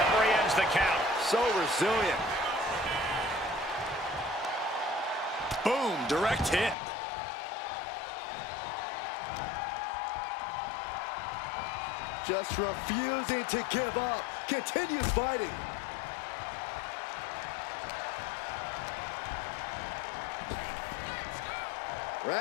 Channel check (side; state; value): right; drops out; at 6.8 s